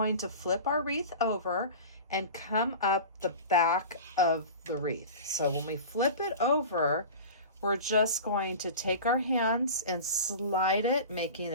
to flip our wreath over and come up the back of the wreath. So when we flip it over, we're just going to take our hands and slide it, making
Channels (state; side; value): inverted; both; correlation -0.34